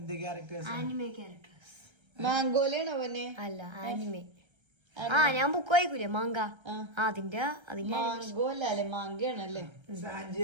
ക്യാരക്ടേഴ്സ്? മാംഗോലാണോ അവനെ? അല്ല, ആനിമേ. ഞാൻ ബുക്ക് വായിക്കൂലേ, മാങ്ക. അതിന്റെ മാംഗോല്ലേ? മാങ്കയാണല്ലേ? സാഞ്ചി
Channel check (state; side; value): late; left; 1.3 ms